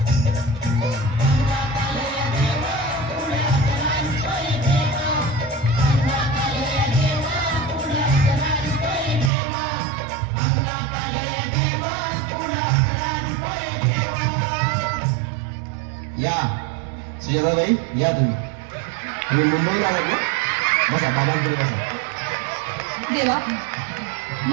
या सुजाताबाई, या तुम्ही मुंबईला आलात ना? बसा, बाबांपुढे बसा. देवा,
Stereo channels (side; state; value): left; drops out; at 9.3 s